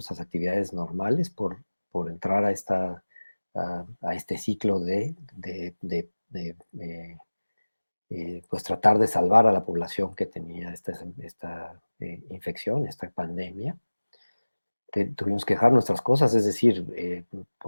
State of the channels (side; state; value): both; inverted; correlation -1.00